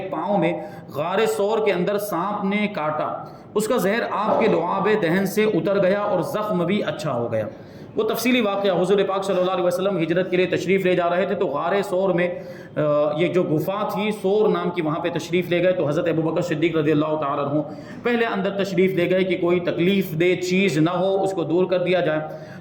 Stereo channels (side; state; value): both; identical; correlation 1.00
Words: پاؤں میں غار ثور کے اندر سانپ نے کاٹا، اس کا زہر آپ کے لعاب دہن سے اتر گیا اور زخم بھی اچھا ہو گیا۔ وہ تفصیلی واقعہ حضور پاک صلی اللہ علیہ وسلم ہجرت کے لیے تشریف لے جا رہے تھے تو غار ثور میں یہ جو گفا تھی ثور نام کی، وہاں پہ تشریف لے گئے تو حضرت ابوبکر صدیق رضی اللہ تعالیٰ عنہ پہلے اندر تشریف لے گئے کہ کوئی تکلیف دہ چیز نہ ہو، اس کو دور کر دیا جائے۔